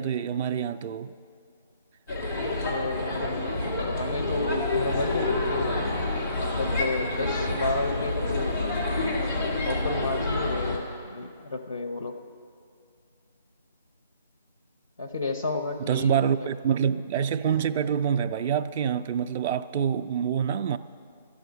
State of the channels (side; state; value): both; inverted; correlation -0.57